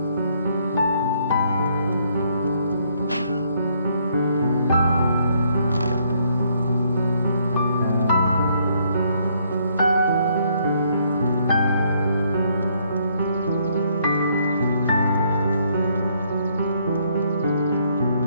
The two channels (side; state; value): both; inverted; correlation -0.69